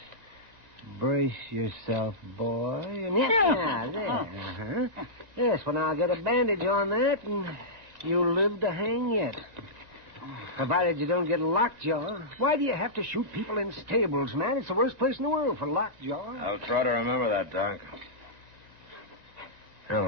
brace yourself, boy. And yeah, there. Uh-huh. Yes, well, now I'll get a bandage on that, and you'll live to hang yet. Provided you don't get lockjaw. Why do you have to shoot people in stables, man? It's the worst place in the world for lockjaw. I'll try to remember that, Doc. Well,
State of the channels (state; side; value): late; left; 1.9 ms